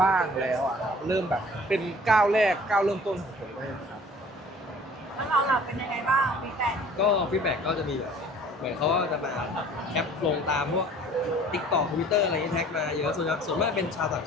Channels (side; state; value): both; normal; correlation 0.50